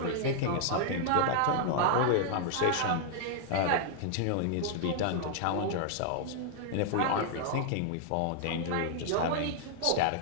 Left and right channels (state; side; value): different; both; correlation 0.00